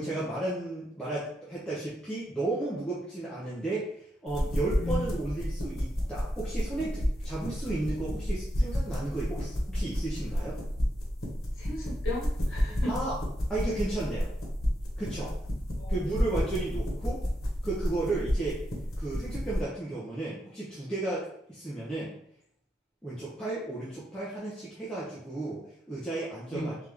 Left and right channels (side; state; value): both; normal; correlation 0.83